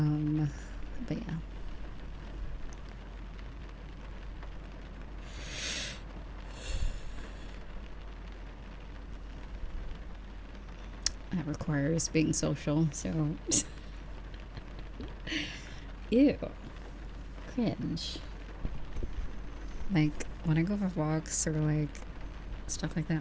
yeah. That requires being social, so ew. Cringe. Like when I go for walks or like stuff like that,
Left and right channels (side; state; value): both; identical; correlation 1.00